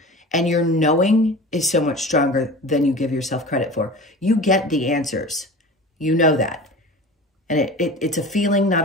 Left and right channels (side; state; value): both; normal; correlation 0.36